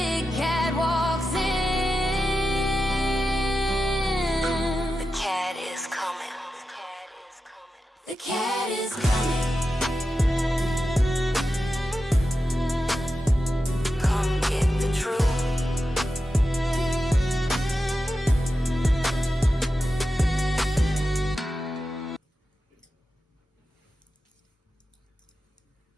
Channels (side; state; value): both; normal; correlation 0.91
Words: cat walks in. The cat is coming. The cat is coming. Come get the truth.